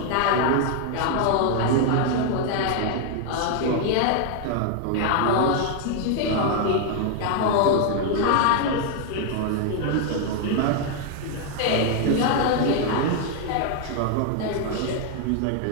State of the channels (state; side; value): different; both; correlation 0.00